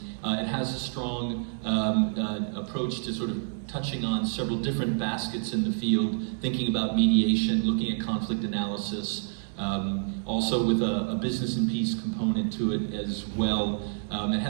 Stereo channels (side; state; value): left; silent; 59 dB below the other